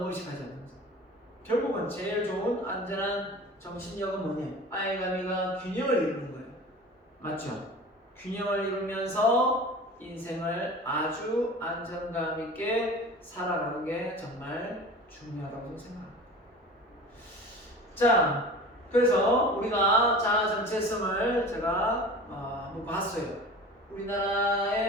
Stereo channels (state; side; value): normal; both; correlation 0.38